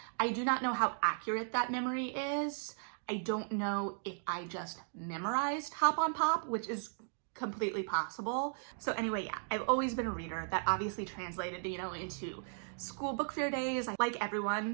I do not know how accurate that memory is. I don't know if I just memorized Hop on Pop, which is completely possible. So anyway, yeah, I've always been a reader. That obviously translated, into school book fair days. Like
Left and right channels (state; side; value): silent; left; digital silence